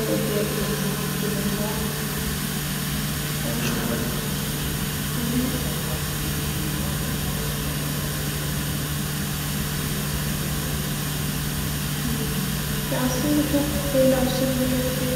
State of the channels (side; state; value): both; identical; correlation 1.00